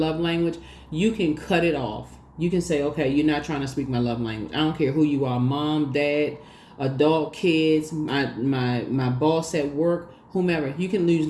language. You can cut it off. You can say, okay, you're not trying to speak my love language. I don't care who you are, mom, dad, adult, kids, my boss at work, whomever. You can lose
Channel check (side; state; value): both; identical; correlation 1.00